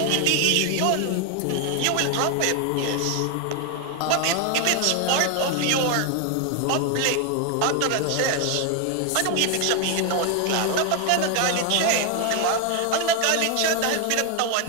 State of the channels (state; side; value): different; both; correlation 0.00